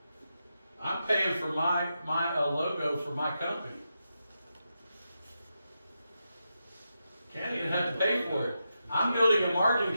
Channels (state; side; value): inverted; both; correlation -0.87